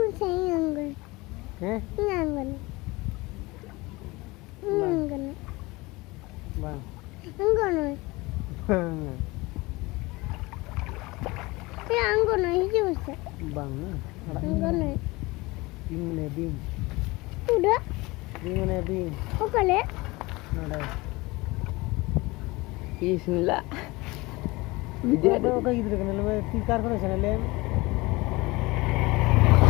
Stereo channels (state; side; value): quieter; right; 22.6 dB